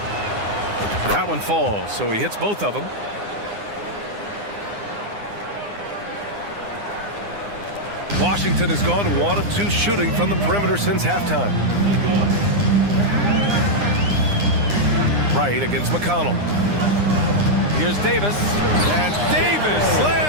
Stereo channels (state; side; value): late; left; 9.8 ms